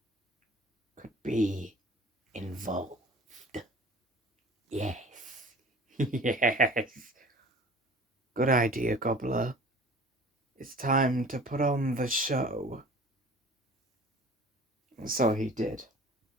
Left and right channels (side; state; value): both; normal; correlation 0.45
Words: could be involved. Yes. Yes. Good idea, Gobbler. It's time to put on the show. And so he did.